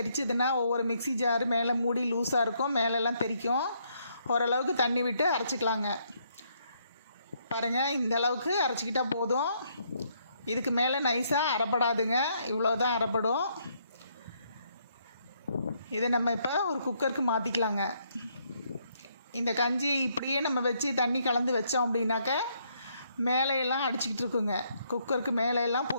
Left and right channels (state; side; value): inverted; both; correlation -0.72